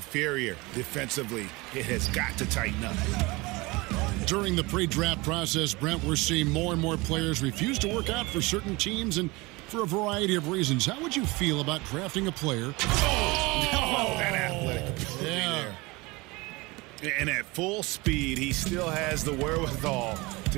defensively. It has got to tighten up. During the pre-draft process, Brent, we're seeing more and more players refuse to work out for certain teams and for a variety of reasons. How would you feel about drafting a player? Oh, that athletic ability there. And at full speed, he still has the wherewithal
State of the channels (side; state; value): left; quieter; 23.7 dB